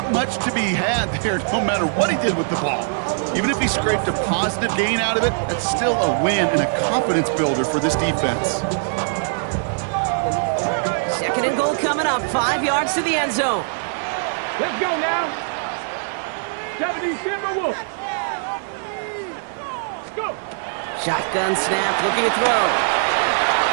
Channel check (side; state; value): left; silent; 56 dB below the other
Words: much to be had there, no matter what he did with the ball. Even if he scraped a positive gain out of it, that's still a win and a confidence builder for this defense. Second and goal coming up, 5 yards to the end zone. Let's go now. 70 Timberwolves. Go. Shotgun snap, looking to throw.